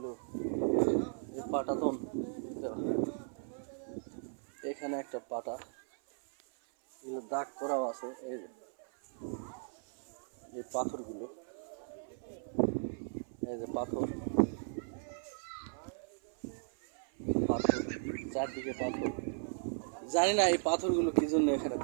পাটাতন দেওয়া, এখানে একটা পাটা দাগ করাও আছে। এই পাথরগুলো, এই যে পাথর পাথর চারদিকে পাথর। জানি না এই পাথরগুলো কি জন্য এখানে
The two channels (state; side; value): silent; left; 53 dB below the other